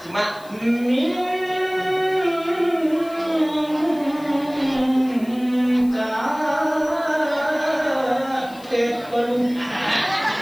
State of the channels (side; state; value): left; noise; hiss, 24 dB below the sound